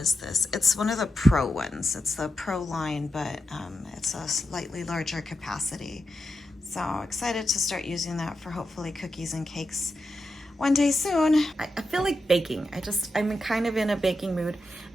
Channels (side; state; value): both; normal; correlation 0.87